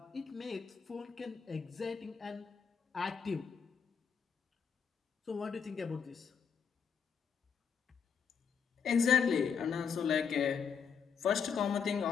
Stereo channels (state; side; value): quieter; right; 6.6 dB